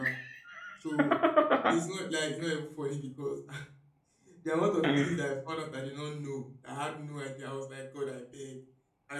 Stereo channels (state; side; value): identical; both; correlation 1.00